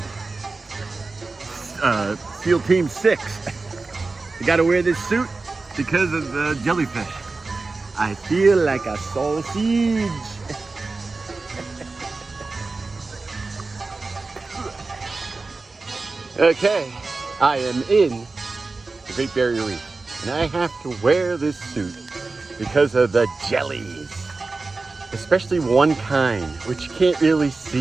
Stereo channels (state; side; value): quieter; left; 3.7 dB